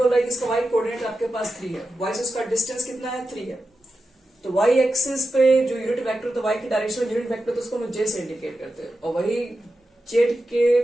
रहा है कि इसका y कोऑर्डिनेट आपके पास 3 है, y से उसका डिस्टेंस कितना है, 3 है। तो y एक्सिस पे जो यूनिट वेक्टर, तो y की डायरेक्शन में यूनिट वेक्टर, तो उसको हम j से इंडिकेट करते हैं, और वही z के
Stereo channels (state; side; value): normal; both; correlation 0.91